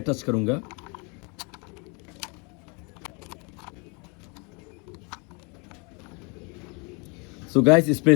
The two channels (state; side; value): quieter; right; 32.0 dB